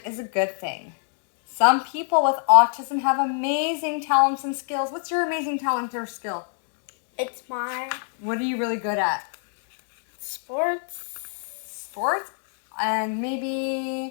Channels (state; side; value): silent; right; 61 dB below the other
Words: is a good thing. Some people with autism have amazing talents and skills. What's your amazing talent or skill? It's my What are you really good at? sports. Sports? And